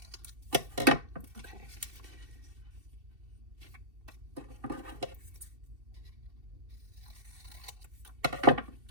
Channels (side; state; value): left; late; 2.7 ms